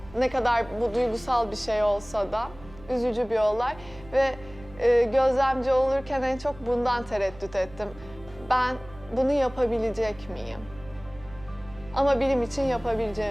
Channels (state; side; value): noise; right; hum, 21 dB below the sound